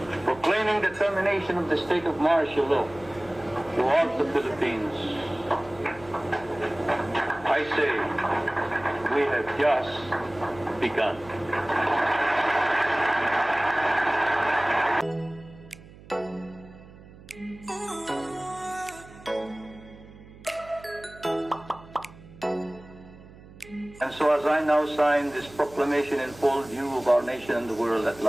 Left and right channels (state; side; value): noise; right; hum, 20 dB below the sound